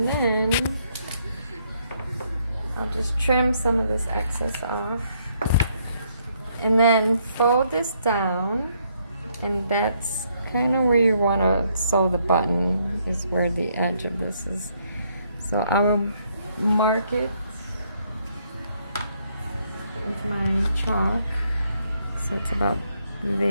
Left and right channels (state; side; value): inverted; both; correlation -0.71